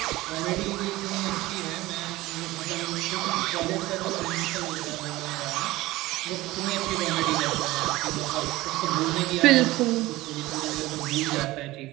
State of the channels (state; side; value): quieter; left; 18.6 dB